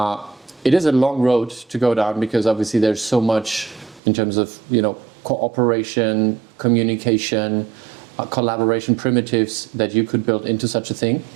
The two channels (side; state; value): left; drops out; at 4.0 s